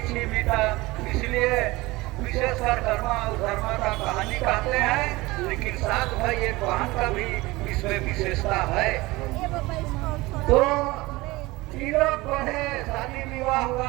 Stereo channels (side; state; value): left; quieter; 21.0 dB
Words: ही बीता। इसलिए विशेषकर कर्म और धर्म का कहानी कहते हैं, लेकिन साथ भाई एक बहन का भी इसमें विशेषता है। तो तीनों बढ़े, शादी विवाह